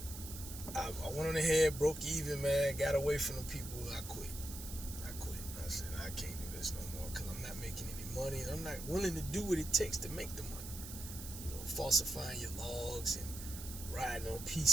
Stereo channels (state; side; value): noise; right; hiss, 10 dB below the sound